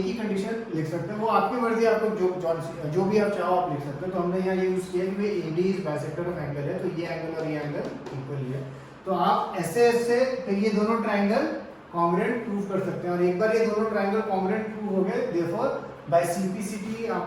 ही कंडीशन लिख सकते हैं, वो आपकी मर्जी, आपको जो भी आप चाहो आप लिख सकते हो। तो हमने यहाँ ये यूज किया कि भाई AD is bisector of angle है, तो ये एंगल और ये एंगल इक्वल ही है। तो आप ऐसे ऐसे फिर ये दोनों ट्राइंगल कॉन्ग्रुएंट प्रूव कर सकते हैं, और एक बार ये दोनों ट्राइंगल कॉन्ग्रुएंट प्रूव हो गए, देयरफॉर बाय CPCT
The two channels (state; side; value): identical; both; correlation 1.00